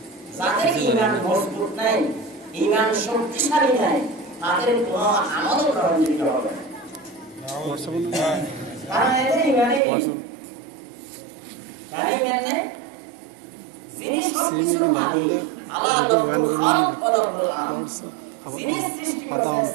যাদের ইমান মজবুত নাই, ইমান শক্তিশালী নাই, তাদের কোনো আমল গ্রহণযোগ্য হবে না। কারণ এদের ইমানে নেই। যিনি সবকিছুর মালিক, আল্লাহ লাহুল খালক ওয়া লাহুল আমর, যিনি সৃষ্টি করেছেন,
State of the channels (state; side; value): drops out; left; at 9.8 s